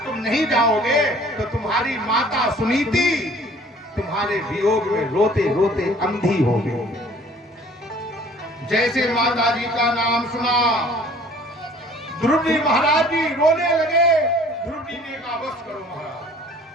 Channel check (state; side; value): normal; both; correlation 0.52